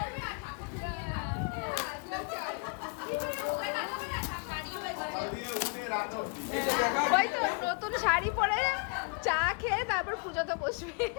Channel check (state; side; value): quieter; right; 33.7 dB